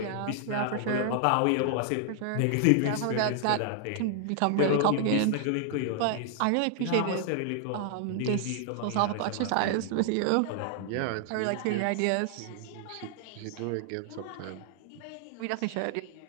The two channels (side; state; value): both; different; correlation 0.00